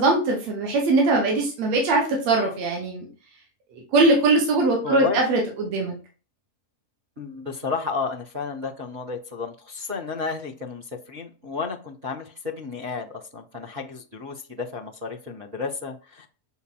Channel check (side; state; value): left; late; 5.3 ms